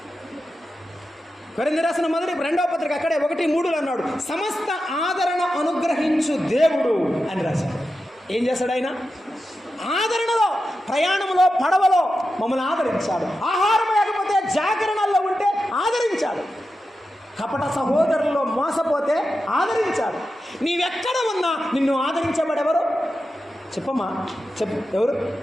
కొరింథీ రాసిన మొదటి 2వ పత్రిక అక్కడే 1:3 అన్నాడు, సమస్త ఆదరణ అనుగ్రహించు దేవుడు అని రాశాడు. ఏం చేశాడు ఆయన? ఆదరణలో, ప్రయాణంలో, పడవలో మమ్మల్ని ఆదరించాడు. ఆహారం లేకపోతే జాగరణల్లో ఉంటే ఆదరించాడు. కపట సహోదరుల్లో మోసపోతే ఆదరించాడు. నీవెక్కడ ఉన్నా నిన్ను ఆదరించేవాడెవరు? చెప్పమ్మా, చెప్పు, ఎవరు?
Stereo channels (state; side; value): normal; both; correlation 0.90